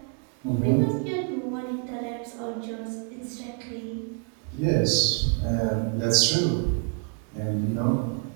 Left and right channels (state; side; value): quieter; left; 37.0 dB